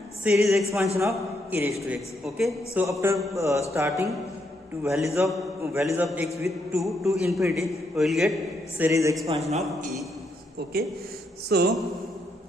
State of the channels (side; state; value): both; normal; correlation 0.77